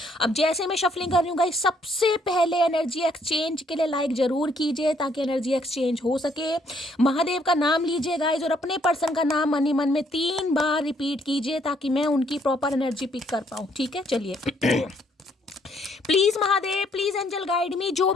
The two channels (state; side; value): normal; both; correlation 0.68